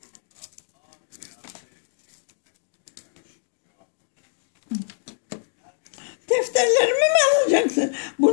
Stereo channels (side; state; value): right; silent; digital silence